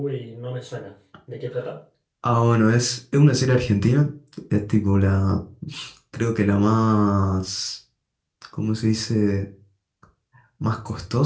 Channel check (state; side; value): identical; both; correlation 1.00